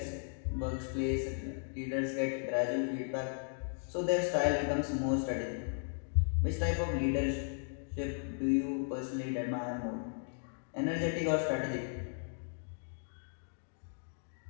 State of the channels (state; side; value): silent; right; digital silence